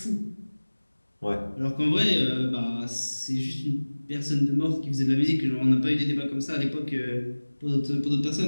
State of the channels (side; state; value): both; inverted; correlation -1.00